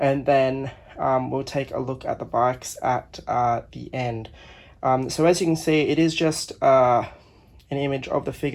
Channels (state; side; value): identical; both; correlation 1.00